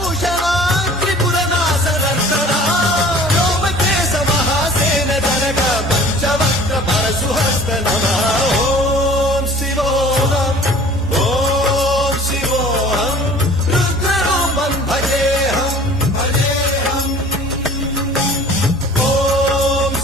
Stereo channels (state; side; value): normal; both; correlation 0.47